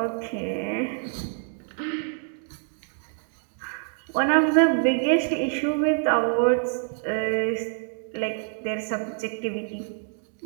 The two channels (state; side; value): silent; left; 61 dB below the other